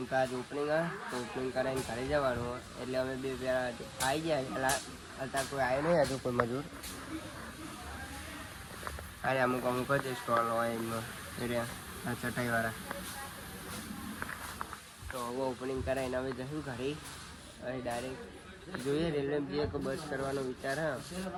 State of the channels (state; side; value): identical; both; correlation 1.00